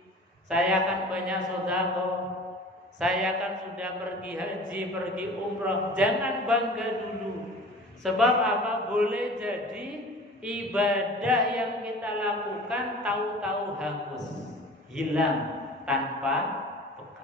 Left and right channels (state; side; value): normal; both; correlation 0.41